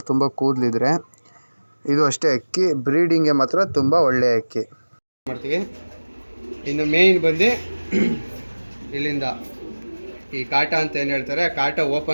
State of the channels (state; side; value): inverted; both; correlation -1.00